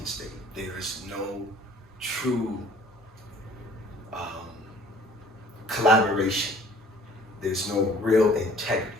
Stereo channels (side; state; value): both; normal; correlation 0.53